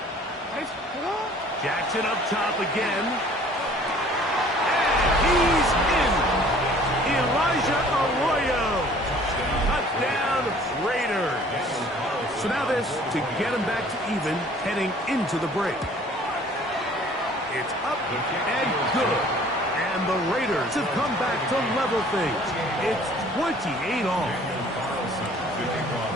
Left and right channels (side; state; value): both; normal; correlation 0.53